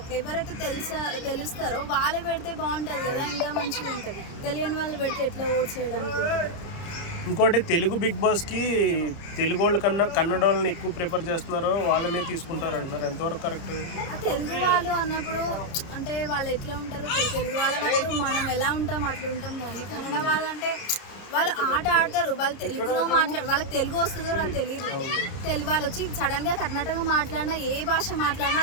ఎవరైతే తెలుస్తారో వాళ్ళే పెడితే బాగుంటుంది కదా, ఇంకా మంచిగా ఉంటుంది. తెలియని వాళ్ళు పెడితే ఎట్లా ఓట్స్ చేయడానికి ఉంటుంది. ఇంకోటి తెలుగు బిగ్ బాస్కి తెలుగు వాళ్ళ కన్నా కన్నడ వాళ్ళని ఎక్కువ ప్రిఫర్ చేస్తున్నారో వాళ్ళనే తీసుకుంటున్నారు అంటున్నారు, ఎంతవరకు కరెక్ట్? తెలుగు వాళ్ళు అన్నప్పుడు అంటే వాళ్ళు ఎట్లా ఉంటారో తెలుగు వాళ్ళు అన్నప్పుడు మనం ఎలా ఉంటాం అట్లా ఉంటాం, కానీ కన్నడ వాళ్ళు అంటే వాళ్ళు ఆట ఆడతారు, వాళ్ళు తెలుగులో వాళ్ళకి తెలుగు వస్తుందో నాకు తెలియదు. తెలుగు వాళ్ళు వచ్చి సడన్గా కర్ణాటక మాట్లాడినా, ఏ భాష మాట్లాడినా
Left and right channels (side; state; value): right; late; 30 ms